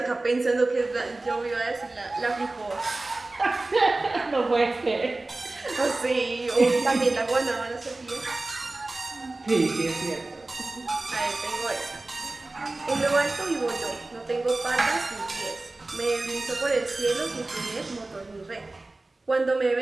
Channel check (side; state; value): left; quieter; 3.0 dB